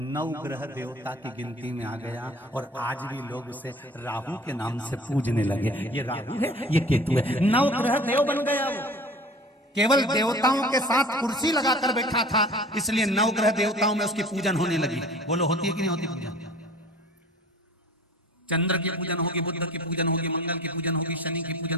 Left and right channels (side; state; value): both; normal; correlation 0.44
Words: 9 ग्रह देवता की गिनती में आ गया, और आज भी लोग उसे राहु के नाम से पूजने लगे। ये राहु है, ये केतु है, 9 ग्रह देव बन गया वो। केवल देवताओं के साथ कुर्सी लगाकर बैठा था, इसलिए 9 ग्रह देवताओं में उसकी पूजन होने लगी। बोलो होती है कि नहीं होती पूजन? चंद्र की पूजन होगी, बुद्ध की पूजन होगी, मंगल की पूजन होगी, शनि की